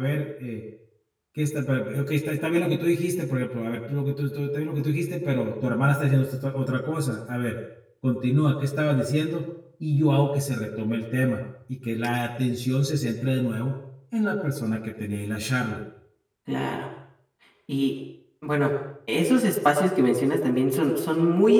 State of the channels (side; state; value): both; identical; correlation 1.00